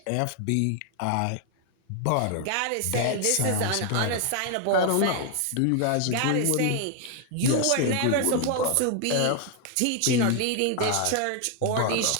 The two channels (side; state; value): both; different; correlation 0.00